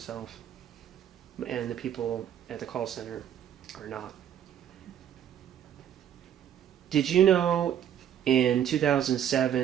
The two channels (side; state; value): left; quieter; 10.0 dB